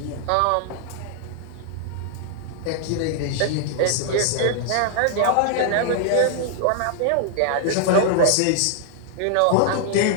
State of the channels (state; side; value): different; both; correlation 0.00